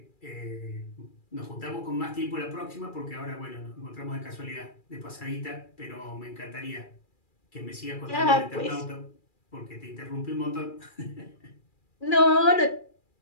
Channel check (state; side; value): late; right; 2.4 ms